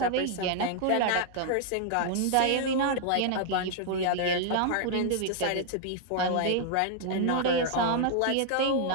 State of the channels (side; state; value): both; different; correlation 0.00